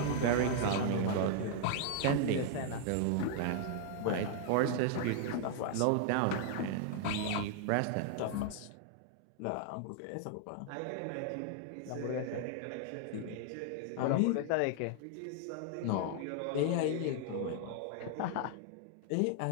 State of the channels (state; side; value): different; both; correlation -0.01